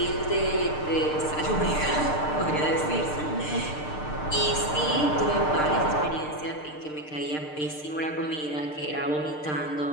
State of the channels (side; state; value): right; late; 6.6 ms